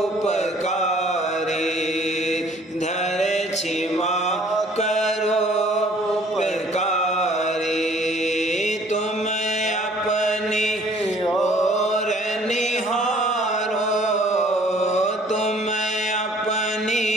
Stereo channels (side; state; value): both; normal; correlation 0.56